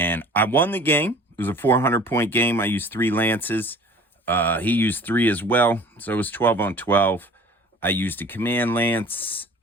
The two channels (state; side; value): normal; both; correlation 0.47